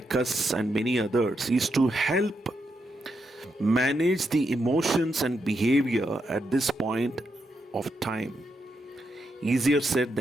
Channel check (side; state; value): both; normal; correlation 0.83